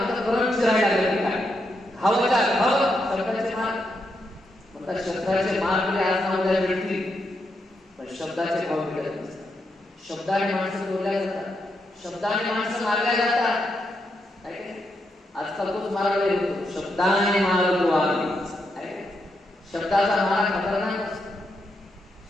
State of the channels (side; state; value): both; normal; correlation 0.82